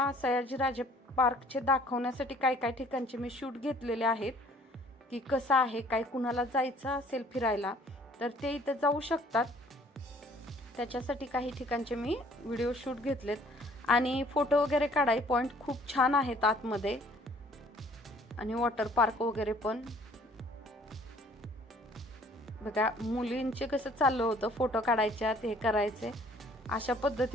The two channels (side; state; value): both; normal; correlation 0.57